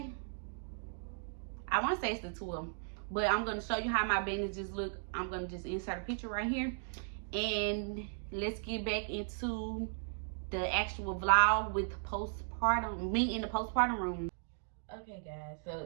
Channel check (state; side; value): silent; left; digital silence